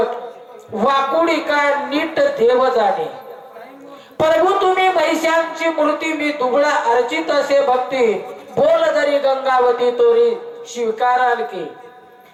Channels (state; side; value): identical; both; correlation 1.00